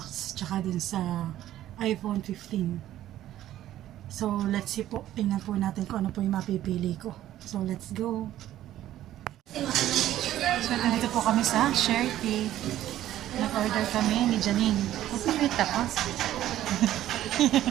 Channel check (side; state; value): left; quieter; 13.1 dB